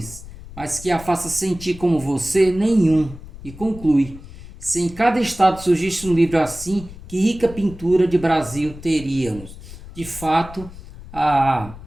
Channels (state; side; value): noise; left; rumble, 16 dB below the sound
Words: mas que a faça sentir como você, nenhum. E conclui: se em cada estado surgisse um livro assim, que rica pintura de Brasil teríamos. De fato, a